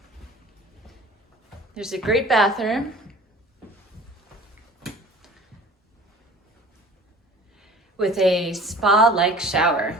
There's a great bathroom with a spa-like shower.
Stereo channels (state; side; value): normal; both; correlation 0.45